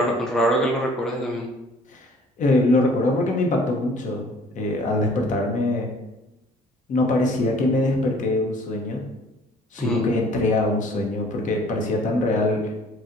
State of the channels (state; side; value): normal; both; correlation 0.55